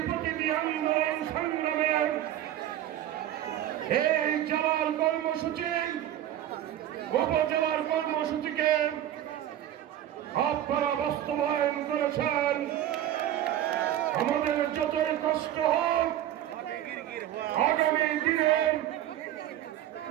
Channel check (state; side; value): quieter; left; 12.1 dB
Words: প্রতিটি আন্দোলন সংগ্রামের এই জেলার কর্মসূচি উপজেলার কর্মসূচিকে আপনারা বাস্তবায়ন করেছেন। আমাদের যতই কষ্ট হোক আগামী দিনে